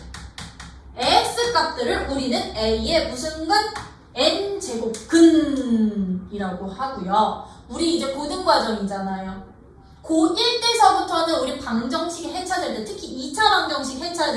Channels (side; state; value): both; identical; correlation 1.00